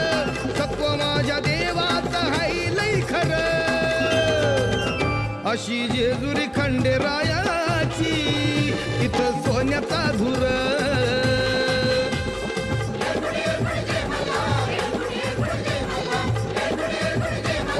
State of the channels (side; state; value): both; identical; correlation 1.00